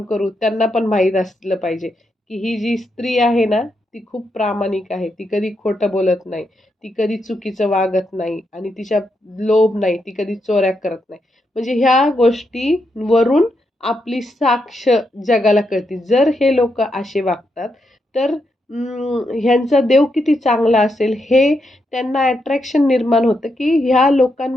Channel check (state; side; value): normal; both; correlation 0.82